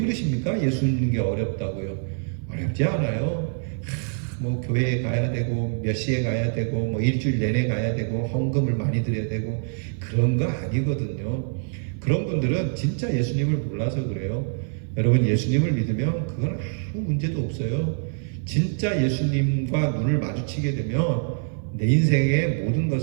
예수 믿는 게 어렵다고요. 어렵지 않아요. 뭐 교회에 가야 되고 몇 시에 가야 되고 뭐 일주일 내내 가야 되고 헌금을 많이 드려야 되고 그런 거 아니거든요. 그런 분들은 진짜 예수님을 몰라서 그래요. 여러분, 예수님을 믿으면 그건 아무 문제도 없어요. 진짜 예수님과 눈을 마주치게 되면 내 인생의 모든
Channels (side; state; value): left; silent; 62 dB below the other